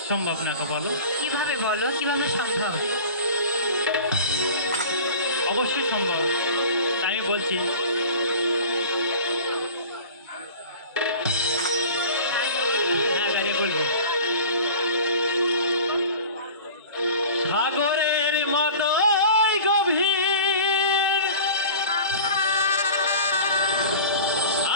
সম্ভব না গো? বলো কিভাবে, বলো কিভাবে সম্ভব? অবশ্যই সম্ভব, তাই আমি বলছি। হ্যাঁ, দাঁড়িয়ে বলবে। সাগরের মতো গভীর,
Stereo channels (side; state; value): both; inverted; correlation -0.39